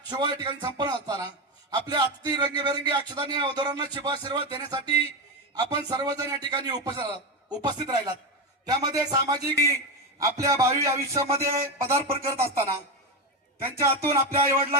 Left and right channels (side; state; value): both; normal; correlation 0.13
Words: शुभ या ठिकाणी संपन्न असताना आपल्या अतिथी रंगीबेरंगी अक्षतांनी वधूवरांना शुभाशीर्वाद देण्यासाठी आपण सर्वजण या ठिकाणी उपस्थित राहिलात. त्यामध्ये सामाजिक आपल्या भावी आयुष्यामध्ये पदार्पण करत असताना त्यांच्या हातून आपल्या आई